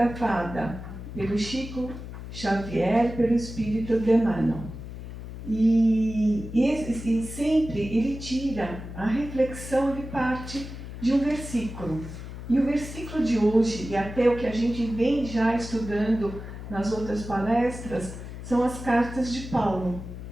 pelo Chico Xavier, pelo Espírito de Emmanuel. E sempre ele tira a reflexão de parte de um versículo. E o versículo de hoje, e até o que a gente vem já estudando nas outras palestras, são as cartas de Paulo.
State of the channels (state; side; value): noise; left; hum, 10 dB below the sound